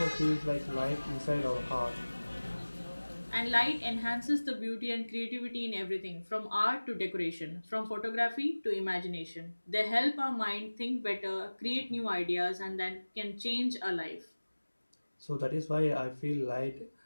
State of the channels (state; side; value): inverted; both; correlation -1.00